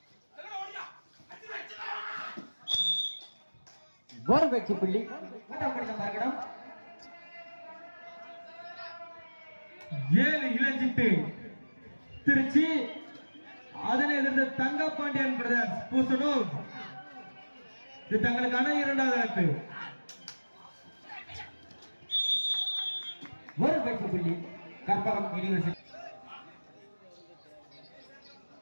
ஒரு வெற்றி புள்ளி. மூன்றாம் கடிதம் மறுகடம் 7 இளஞ்சிட்டு திருச்சி. அதனை எதிர்த்து தங்கப்பாண்டியன் பிரதர்ஸ் பூசனூர். இது தங்களுக்கான இரண்டாவது அழைப்பு. ஒரு வெற்றி புள்ளி கற்பகம் யூனிவர்சிட்டி.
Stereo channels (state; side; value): inverted; both; correlation -1.00